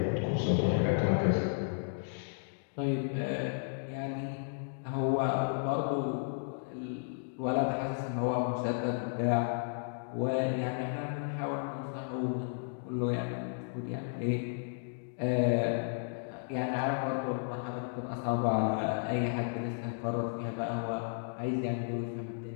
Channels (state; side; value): silent; right; digital silence